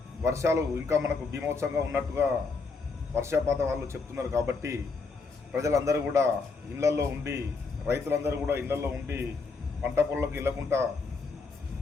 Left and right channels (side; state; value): right; quieter; 4.4 dB